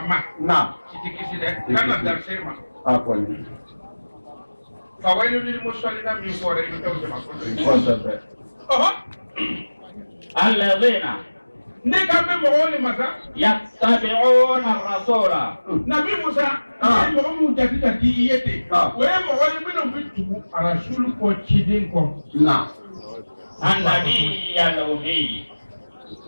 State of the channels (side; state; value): both; inverted; correlation -1.00